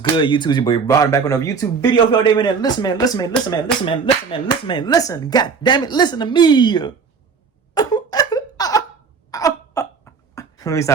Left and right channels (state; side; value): quieter; left; 5.4 dB